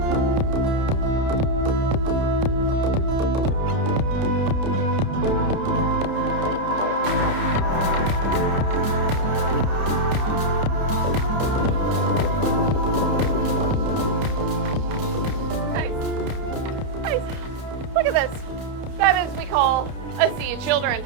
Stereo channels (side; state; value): left; late; 30 ms